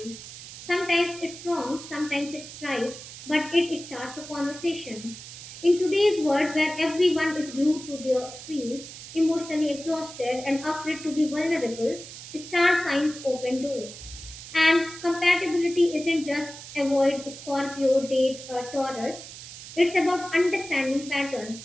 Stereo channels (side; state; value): right; noise; hiss, 13 dB below the sound